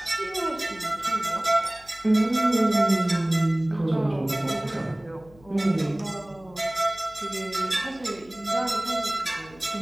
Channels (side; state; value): left; noise; hum, 25 dB below the sound